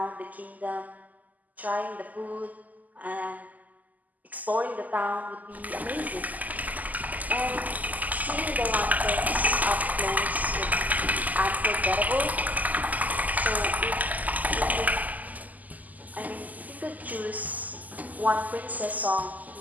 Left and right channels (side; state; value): left; late; 0.080 ms